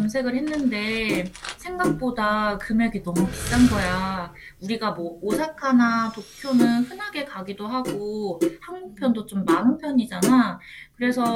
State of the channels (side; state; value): both; identical; correlation 1.00